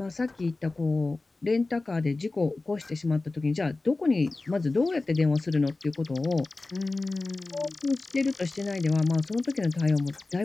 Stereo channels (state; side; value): quieter; right; 3.3 dB